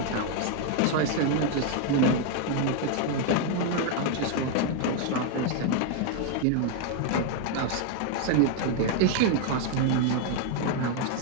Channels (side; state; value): both; different; correlation 0.01